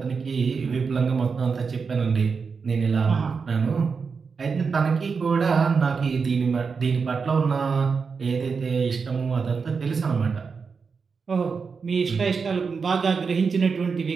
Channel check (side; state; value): left; quieter; 5.3 dB